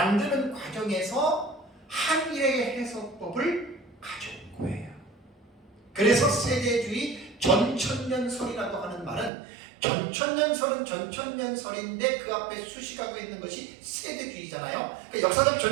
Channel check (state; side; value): drops out; left; at 9.3 s